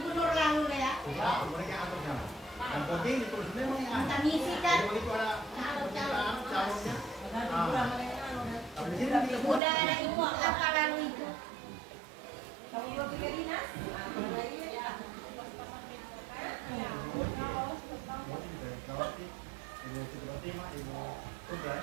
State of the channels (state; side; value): drops out; left; at 9.6 s